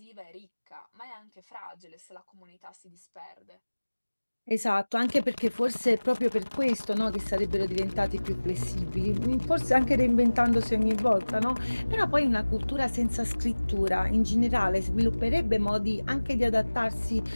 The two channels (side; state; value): both; inverted; correlation -1.00